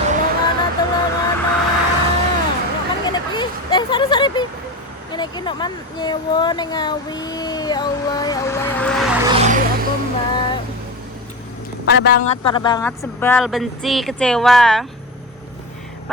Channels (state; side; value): normal; both; correlation 0.23